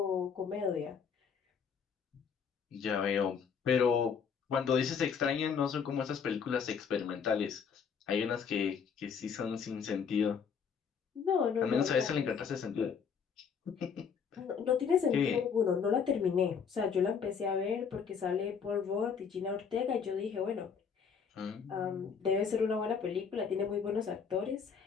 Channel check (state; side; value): quieter; right; 6.5 dB